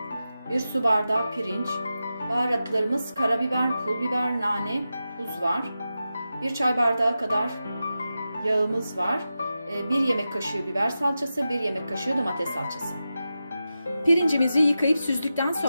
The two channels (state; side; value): inverted; both; correlation -0.91